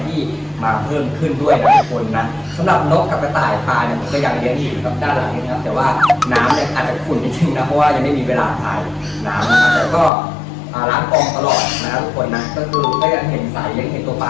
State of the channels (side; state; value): right; drops out; at 10.1 s